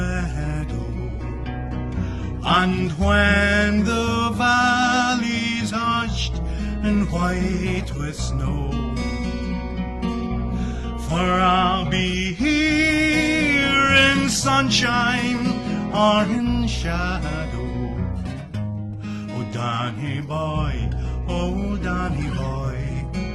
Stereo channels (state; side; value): identical; both; correlation 1.00